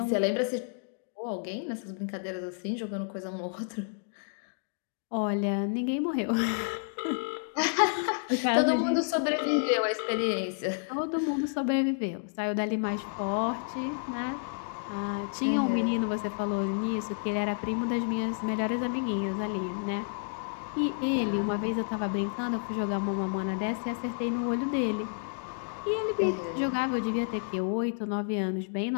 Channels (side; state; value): right; silent; digital silence